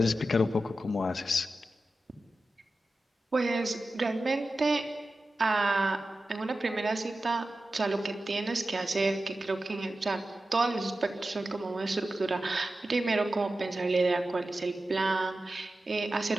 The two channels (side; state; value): both; normal; correlation 0.93